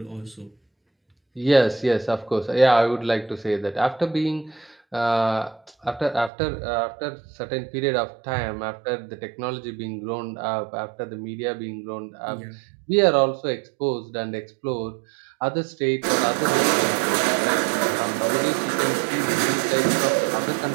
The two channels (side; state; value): left; drops out; at 6.3 s